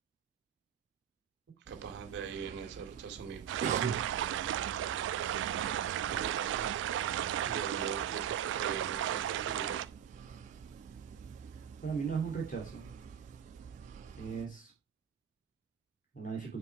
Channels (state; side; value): quieter; left; 9.1 dB